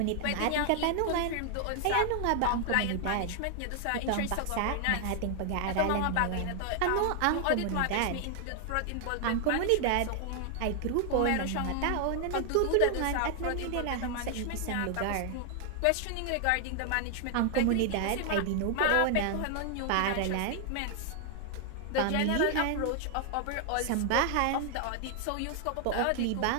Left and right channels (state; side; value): different; both; correlation 0.00